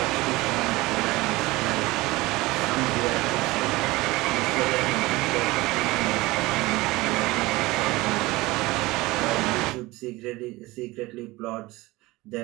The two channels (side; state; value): left; quieter; 20.6 dB